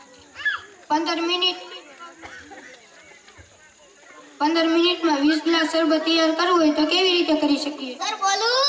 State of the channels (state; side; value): identical; both; correlation 1.00